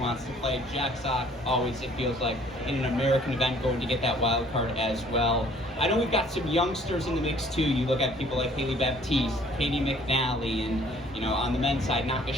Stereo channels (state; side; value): normal; both; correlation 0.57